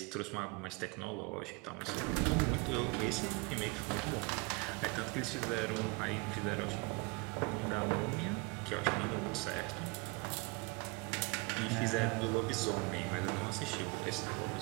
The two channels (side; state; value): left; quieter; 28.0 dB